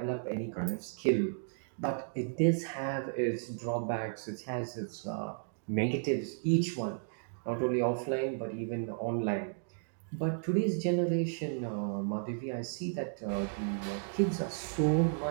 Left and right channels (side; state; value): left; silent; digital silence